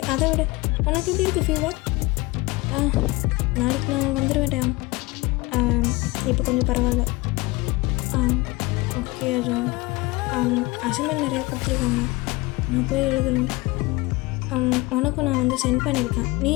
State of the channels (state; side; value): quieter; right; 22.7 dB